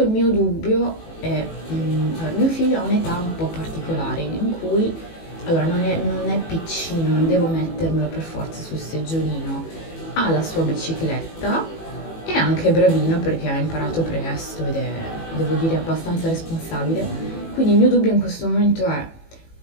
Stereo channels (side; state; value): right; late; 18 ms